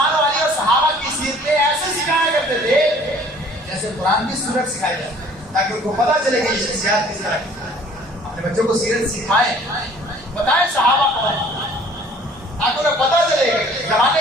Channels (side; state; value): both; normal; correlation 0.53